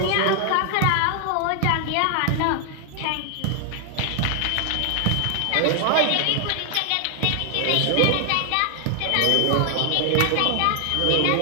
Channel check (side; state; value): both; different; correlation 0.00